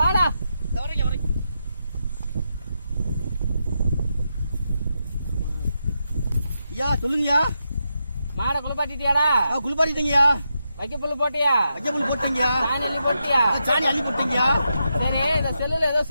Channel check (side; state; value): both; inverted; correlation -0.85